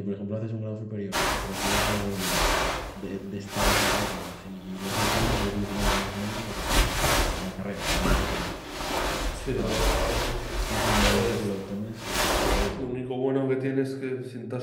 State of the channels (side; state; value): both; identical; correlation 1.00